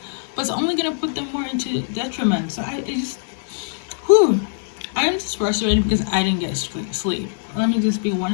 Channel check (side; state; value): right; silent; digital silence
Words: but it's only gonna put them more into detriment. So I am just frustrated because I didn't get sleep. Let me just be